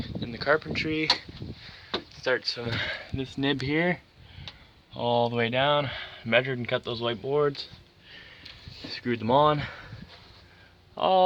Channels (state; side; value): identical; both; correlation 1.00